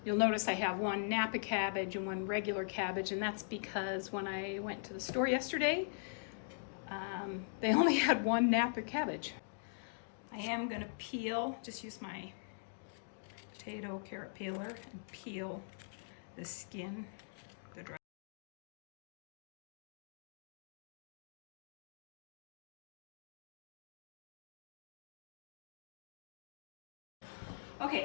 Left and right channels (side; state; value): right; silent; digital silence